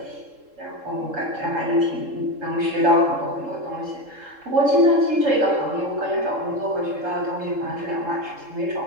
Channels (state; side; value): late; left; 3.7 ms